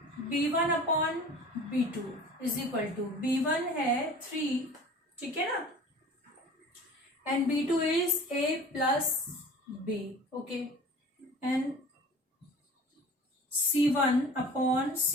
b1 upon b2 is equal to b1 है 3, ठीक है ना, and b2 is a plus b। Okay, and c1 upon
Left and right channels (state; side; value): normal; both; correlation 0.43